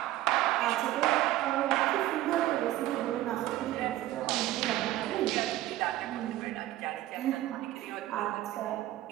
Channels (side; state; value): left; quieter; 15.1 dB